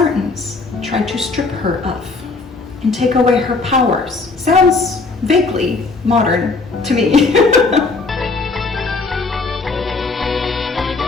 tried to strip her of and take away her powers. Sounds vaguely modern to me.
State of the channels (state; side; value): quieter; right; 3.9 dB